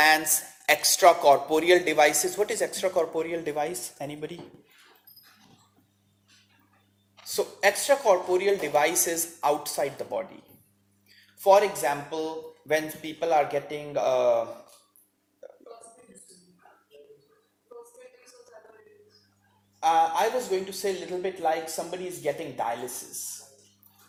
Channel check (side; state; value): both; identical; correlation 1.00